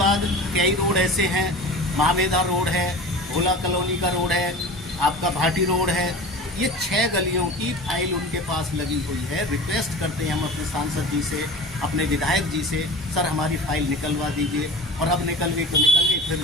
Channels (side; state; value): both; normal; correlation 0.35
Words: कई रोड ऐसे हैं, महावेदा रोड है, भोला कॉलोनी का रोड है, आपका भाटी रोड है। ये 6 गलियों की फाइल उनके पास लगी हुई है। रिक्वेस्ट करते हैं हम अपने सांसद जी से, अपने विधायक जी से, सर हमारी फाइल निकलवा दीजिए। और अब निकल गई तो निकल गई, फिर